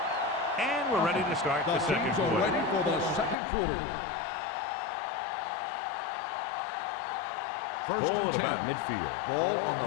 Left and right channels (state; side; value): drops out; right; at 3.4 s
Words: And we're ready to start the second teams are quarter. ready for the second quarter. Ball at about midfield. Ball on